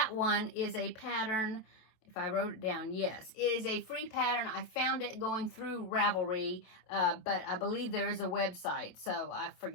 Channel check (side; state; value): right; late; 27 ms